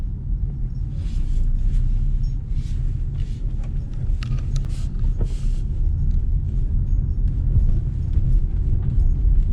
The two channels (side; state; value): both; identical; correlation 1.00